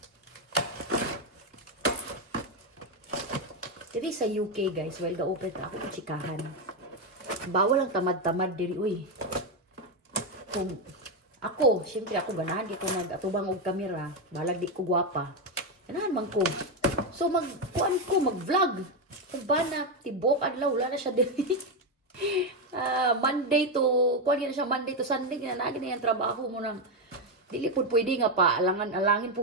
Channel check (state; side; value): normal; both; correlation 0.07